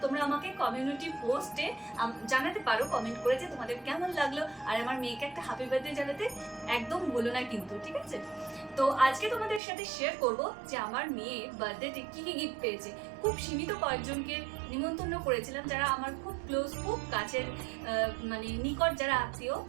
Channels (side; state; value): left; drops out; at 9.6 s